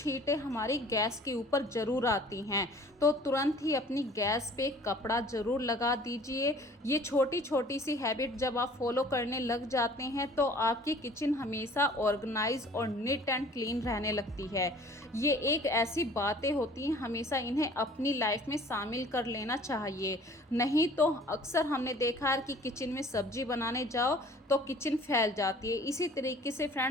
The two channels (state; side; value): normal; both; correlation 0.50